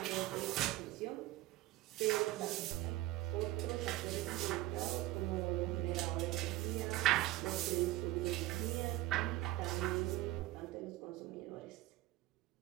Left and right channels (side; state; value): left; quieter; 17.0 dB